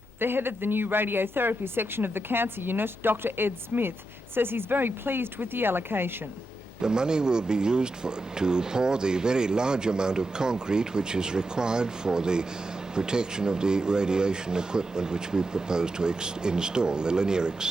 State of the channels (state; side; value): normal; both; correlation 0.87